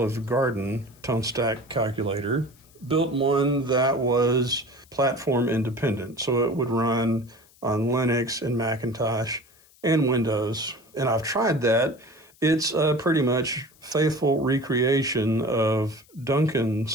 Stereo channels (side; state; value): left; noise; hiss, 29 dB below the sound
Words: Garden tone stack calculator, built one that was platform independent. So it would run on Linux and Macintosh and Windows. And I've tried that. It's a pretty much faithful recreation of